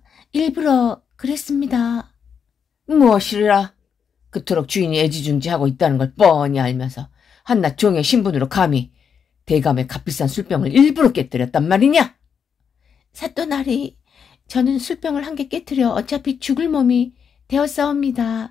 일부러 그랬습니다. 무엇이라? 그토록 주인이 애지중지하고 있다는 걸 뻔히 알면서 한낱 종의 신분으로 감히 대감의 값비싼 술병을 일부러 깨뜨렸단 말이냐? 사또나리, 저는 술병을 한 개 깨뜨려 어차피 죽을 몸이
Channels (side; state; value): right; quieter; 7.0 dB